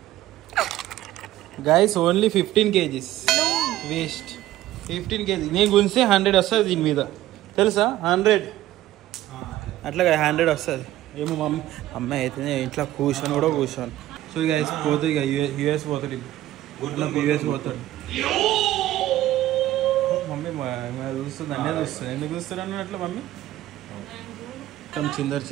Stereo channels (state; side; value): quieter; left; 14.5 dB